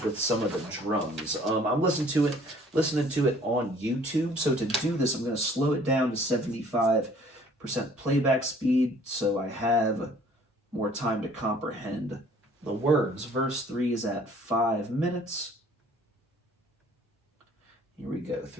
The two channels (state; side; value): normal; both; correlation 0.55